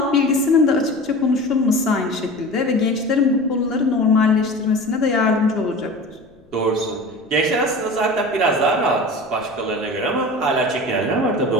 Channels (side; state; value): left; noise; rumble, 29 dB below the sound